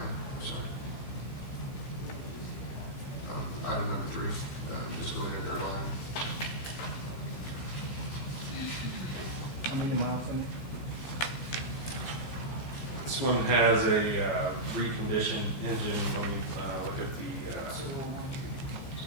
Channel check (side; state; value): right; late; 15 ms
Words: I'm sorry. Item number 3, just go in there, third line. How many miles in it? This one has a reconditioned engine. When we look at the,